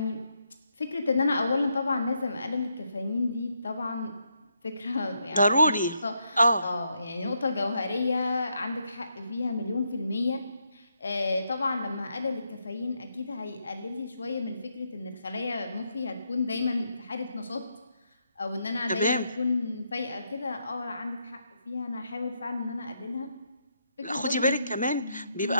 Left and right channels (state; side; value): inverted; both; correlation -0.78